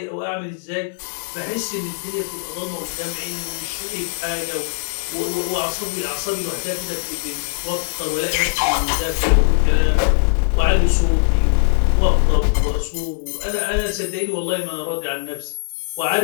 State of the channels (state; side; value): silent; right; digital silence